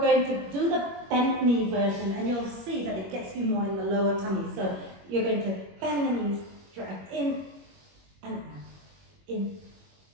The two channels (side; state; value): left; late; 21 ms